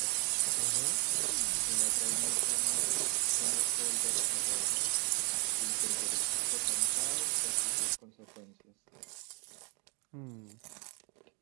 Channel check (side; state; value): left; quieter; 33.6 dB